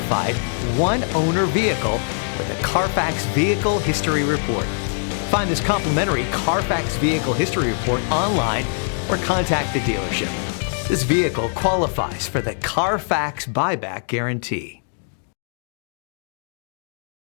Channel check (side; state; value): right; silent; digital silence